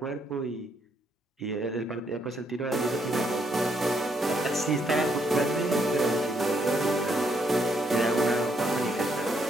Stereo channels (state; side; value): normal; both; correlation 0.74